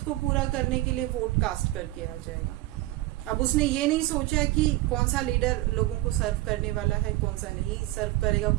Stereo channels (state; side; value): quieter; left; 17.6 dB